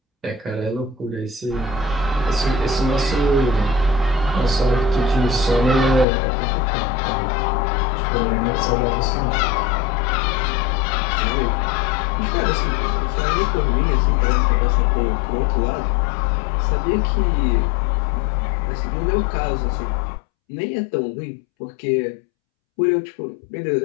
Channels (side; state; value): right; drops out; at 6.1 s